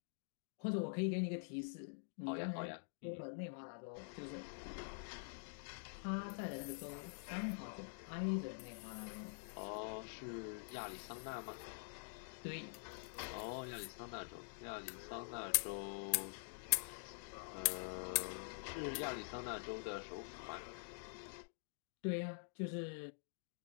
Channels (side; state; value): right; silent; digital silence